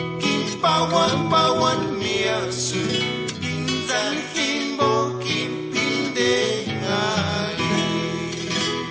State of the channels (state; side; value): identical; both; correlation 1.00